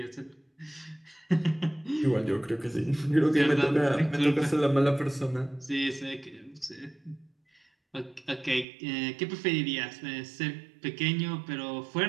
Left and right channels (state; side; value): drops out; left; at 8.7 s